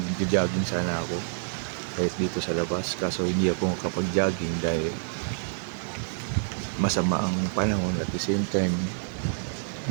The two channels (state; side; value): silent; left; digital silence